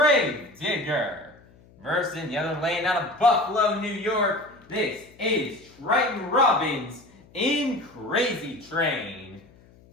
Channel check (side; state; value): left; noise; hum, 26 dB below the sound